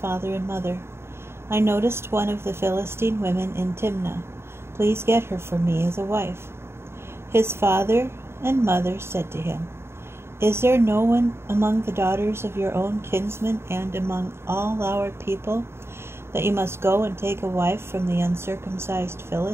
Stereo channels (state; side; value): late; left; 0.12 ms